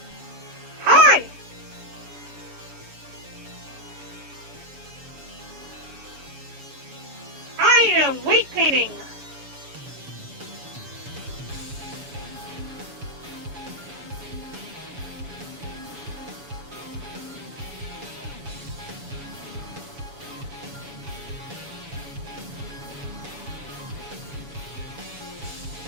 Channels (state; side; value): late; left; 7.0 ms